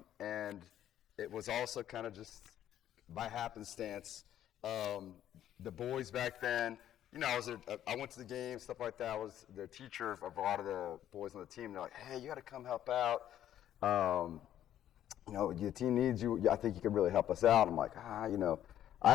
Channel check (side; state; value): right; quieter; 11.4 dB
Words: it was also kind of just by happenstance. The boys back then, I went to the game, stuff like that. I was the teacher of a lot of the boys on the team. They're like, hey, you got to come help out. The team needs you. I think you could really help us out. I'm like,